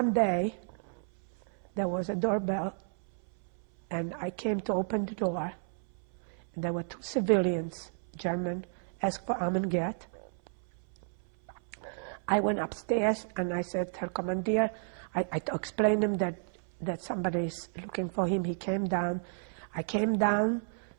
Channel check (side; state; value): left; silent; 56 dB below the other